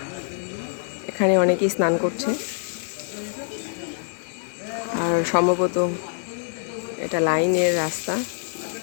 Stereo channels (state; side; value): silent; right; digital silence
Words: এখানে অনেকেই স্নান করছে। আর সম্ভবত এটা লাইনের রাস্তা